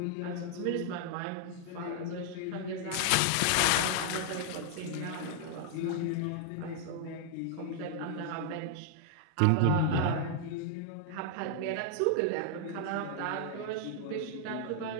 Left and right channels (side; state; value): both; different; correlation 0.00